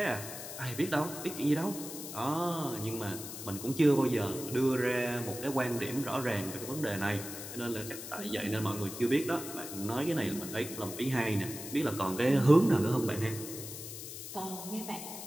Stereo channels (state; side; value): noise; left; hiss, 9 dB below the sound